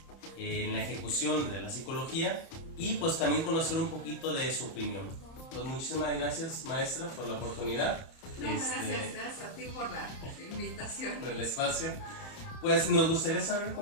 en la ejecución de la psicología, y pues también conocer un poquito de su opinión. Pues muchísimas gracias, maestra, por la oportunidad. No, gracias a ti por la invitación. Por el espacio. Pues nos gustaría saber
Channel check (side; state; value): right; late; 31 ms